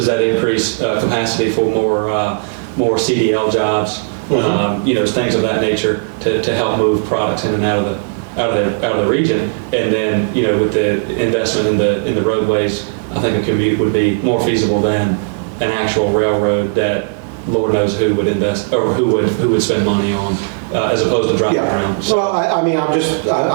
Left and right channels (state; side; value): silent; left; digital silence